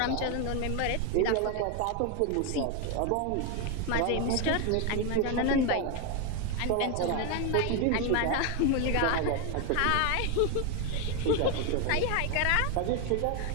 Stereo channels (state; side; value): different; both; correlation 0.01